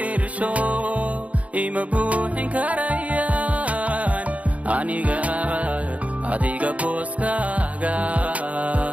ima buuxin karayaan aniga adiga booskaaga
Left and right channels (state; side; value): late; left; 0.067 ms